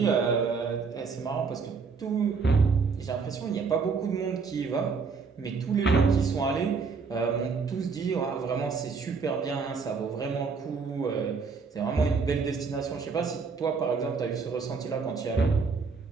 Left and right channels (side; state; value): left; quieter; 5.1 dB